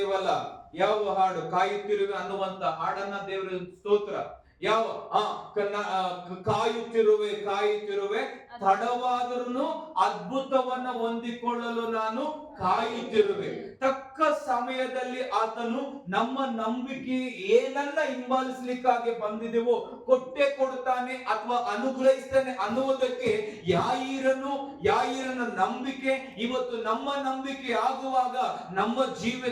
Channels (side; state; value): both; identical; correlation 1.00